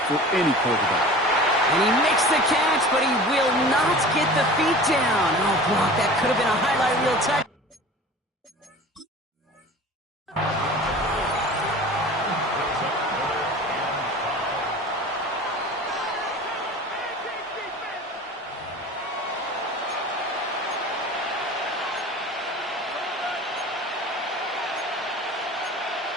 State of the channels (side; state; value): both; normal; correlation 0.39